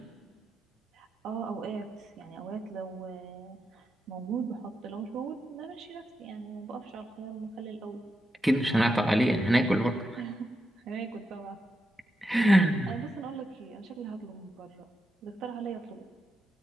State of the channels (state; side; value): normal; both; correlation 0.86